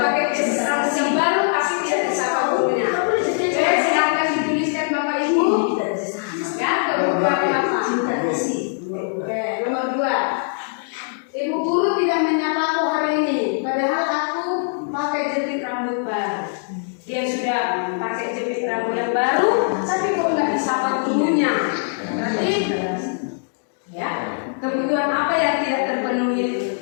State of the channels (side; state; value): right; silent; digital silence